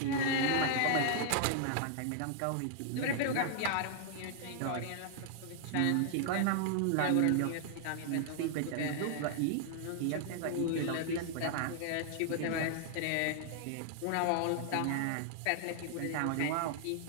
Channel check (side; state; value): both; different; correlation -0.01